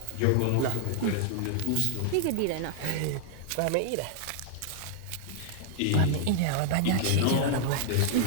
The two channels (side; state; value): both; different; correlation 0.00